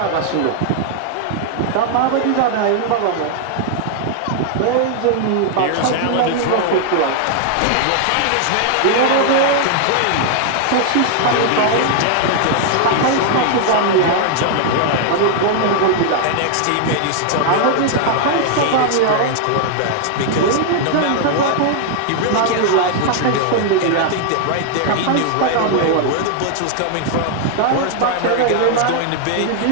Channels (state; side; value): different; both; correlation 0.00